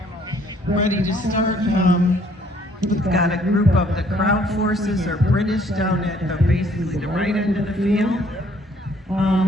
ready to start. We've got a group of the crowd forces or British down at basically the right end of the field.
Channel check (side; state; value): both; normal; correlation 0.62